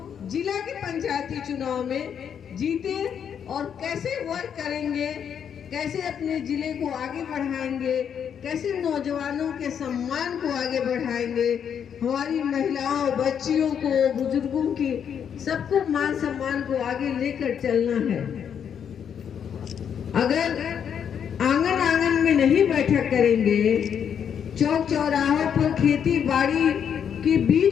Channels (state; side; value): quieter; right; 8.1 dB